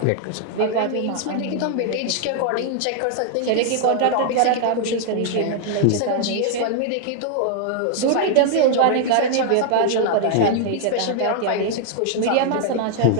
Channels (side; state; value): both; different; correlation 0.00